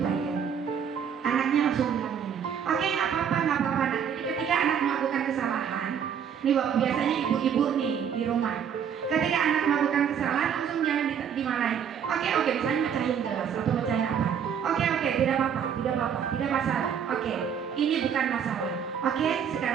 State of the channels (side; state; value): left; quieter; 8.0 dB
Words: Pak ya. Anaknya langsung bilang ini, oke nggak apa-apa nggak apa-apa. Nah, jadi ketika anak melakukan kesalahan, nih biasanya ibu-ibu nih di rumah, ketika anak melakukan kesalahan langsung jangan dimarahin. Oke, misalnya mecahin gelas atau mecahin apa. Oke, tidak apa-apa, tidak masalah. Oke, ini bukan masalah. Oke,